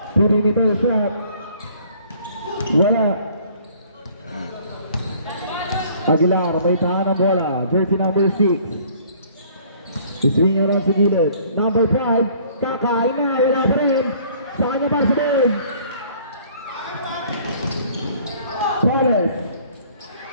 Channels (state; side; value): inverted; both; correlation -0.56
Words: Perimeter shot. Wala. Aguilar, may tahan ng bola. Jersey number 6. Iswing around sa gilid. Number 5. Kakain na. Wala pa rin. Sa kanya para sa big. Torres.